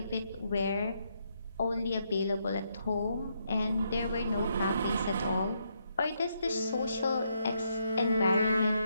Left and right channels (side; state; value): both; inverted; correlation -0.77